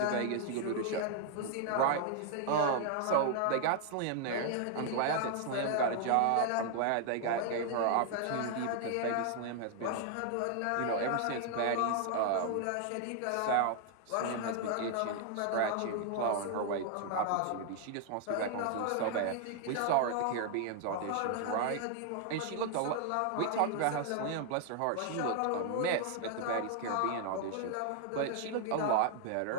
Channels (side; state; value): both; different; correlation 0.00